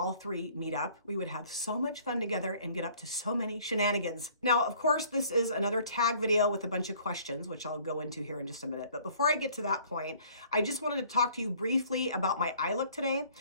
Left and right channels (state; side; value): inverted; both; correlation -0.56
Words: three meet up. We would have so much fun together and get up to so many shenanigans. Now, of course, this is another tag video with a bunch of questions, which I'll go into here in just a minute. But before I get to that point, I just wanted to talk to you briefly about my eye look today.